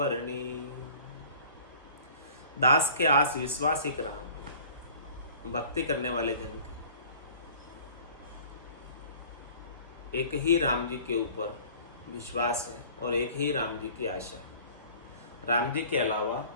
दास के आस विश्वास एक राम है। भक्ति करने वाले जन के एक ही राम जी के ऊपर विश्वास है और एक ही राम जी की आशा। राम जी के अलावा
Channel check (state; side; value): inverted; both; correlation -0.48